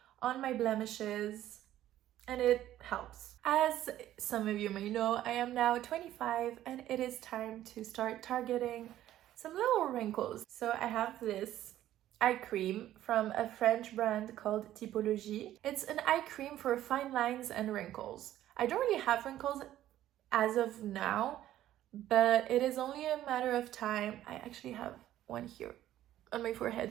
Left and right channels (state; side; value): quieter; left; 13.0 dB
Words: on my blemishes, and it helps. As some of you may know, I am now 25 and it is time to start targeting some little wrinkles. So I have this eye cream from a French brand called Typologie. It's an eye cream for fine lines and wrinkles. I don't really have wrinkles as of now, but it is only a matter of time. I actually have one here on my